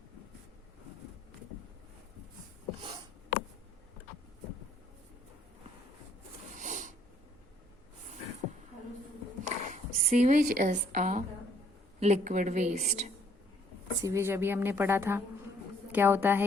Sewage is a liquid waste. Sewage अभी हमने पढ़ा था क्या होता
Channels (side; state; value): both; normal; correlation 0.64